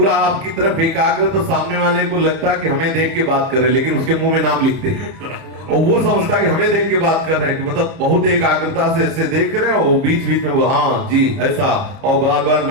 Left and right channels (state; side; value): late; left; 31 ms